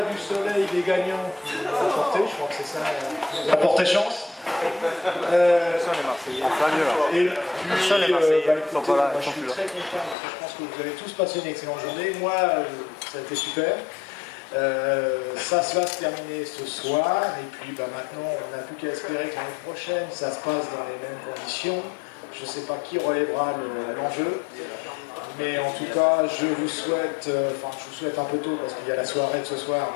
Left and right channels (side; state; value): right; drops out; at 10.2 s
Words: du soleil des gagnants qui nous ont apporté, je crois que c'est ça, qui nous a apporté chance. Et puis, écoutez, moi, je suis très content parce que je pense que vous avez tous passé une excellente journée. Moi, ça a été super. Ça va se terminer ce soir. Et puis maintenant, on n'a plus qu'à espérer que l'année prochaine, ça se passe dans les mêmes conditions. Je ne sais pas qui relèvera l'enjeu. Mais en tout cas, je vous souhaite, je vous souhaite un peu tôt parce qu'il y a la soirée de ce soir.